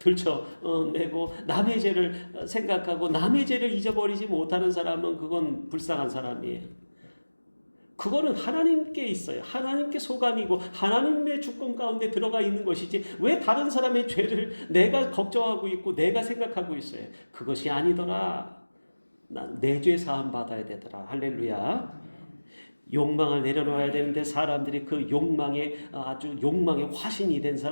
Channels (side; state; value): both; inverted; correlation -1.00